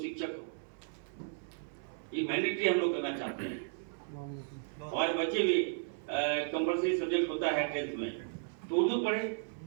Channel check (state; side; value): silent; left; 55 dB below the other